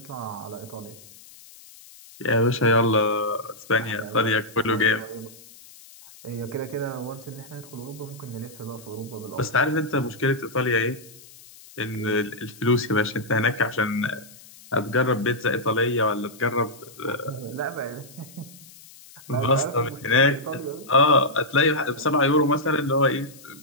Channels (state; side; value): noise; left; hiss, 21 dB below the sound